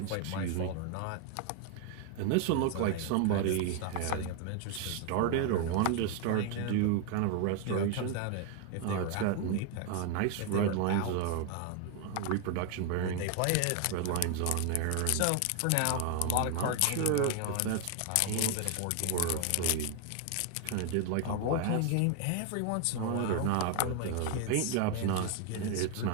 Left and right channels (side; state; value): both; different; correlation 0.01